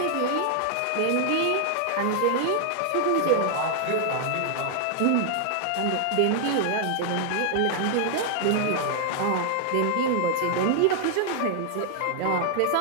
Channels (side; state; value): both; different; correlation 0.00